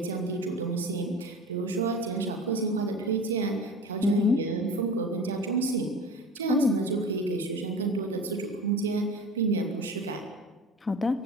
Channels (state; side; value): normal; both; correlation 0.35